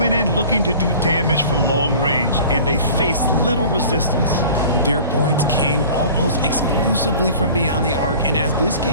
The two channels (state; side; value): inverted; both; correlation -0.44